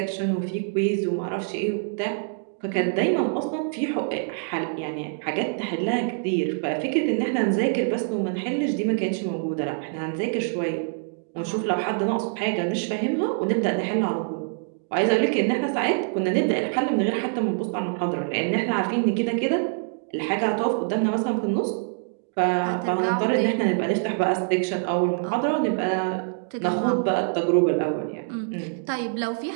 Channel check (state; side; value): silent; left; digital silence